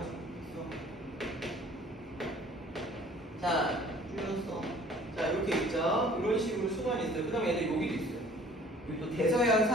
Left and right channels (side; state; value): both; normal; correlation 0.52